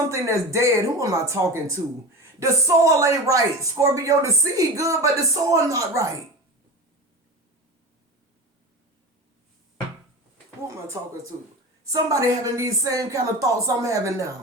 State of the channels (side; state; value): both; normal; correlation 0.29